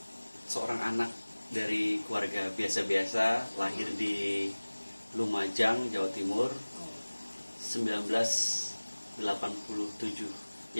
seorang anak dari keluarga biasa-biasa, lahir di Lumajang, Jawa Timur, 1987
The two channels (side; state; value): both; inverted; correlation -1.00